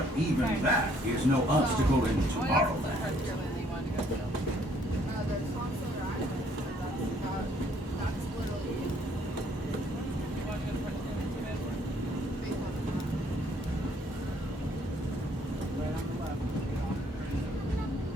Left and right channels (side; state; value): both; normal; correlation 0.64